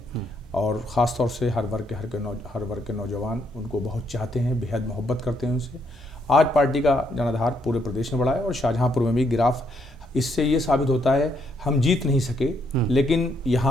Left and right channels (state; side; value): normal; both; correlation 0.74